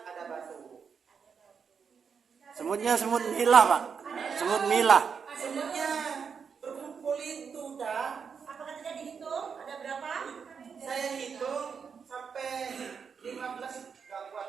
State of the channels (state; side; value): quieter; left; 6.3 dB